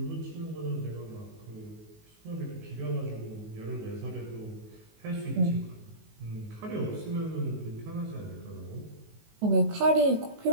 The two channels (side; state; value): left; late; 19 ms